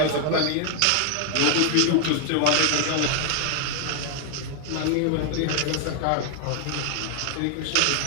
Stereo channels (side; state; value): both; different; correlation 0.00